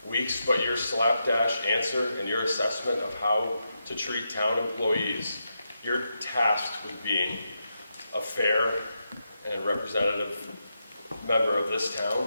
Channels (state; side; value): inverted; both; correlation -0.85